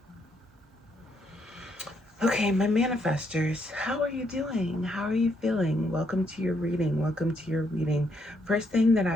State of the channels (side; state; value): both; normal; correlation 0.74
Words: Okay, my manifestors, how are you doing? How are you feeling? Welcome to your reading. Welcome to your reading. First thing that